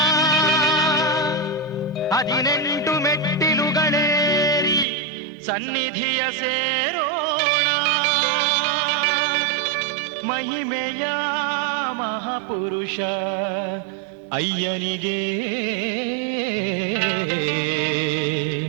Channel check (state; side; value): drops out; left; at 4.9 s